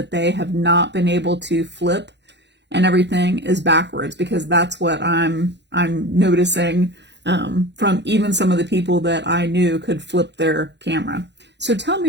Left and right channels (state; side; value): late; left; 0.51 ms